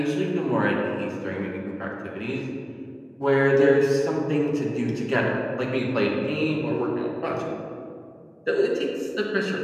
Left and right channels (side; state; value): both; identical; correlation 1.00